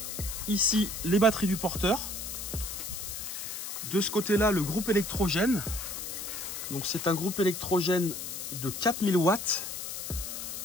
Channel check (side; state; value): left; noise; hiss, 6 dB below the sound